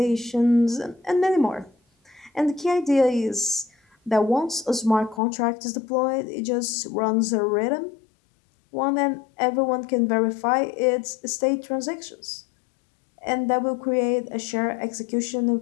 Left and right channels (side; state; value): right; drops out; at 5.2 s